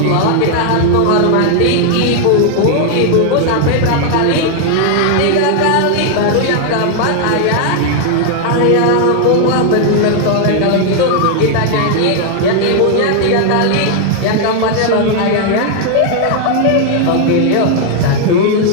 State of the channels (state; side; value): different; both; correlation 0.00